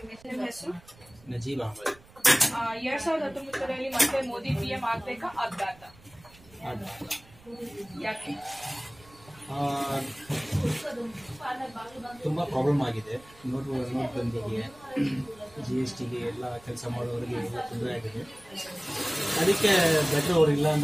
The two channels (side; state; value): right; noise; rumble, 25 dB below the sound